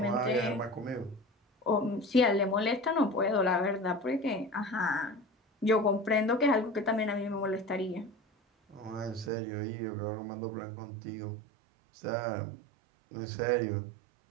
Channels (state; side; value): drops out; left; at 9.3 s